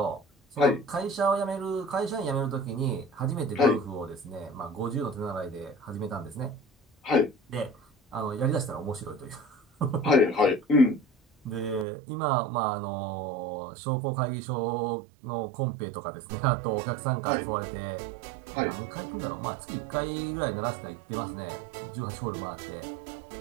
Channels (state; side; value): drops out; left; at 11.9 s